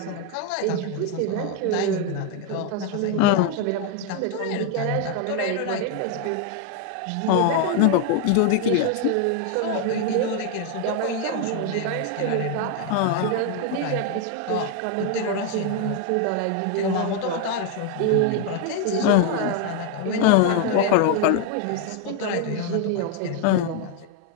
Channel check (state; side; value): different; both; correlation 0.01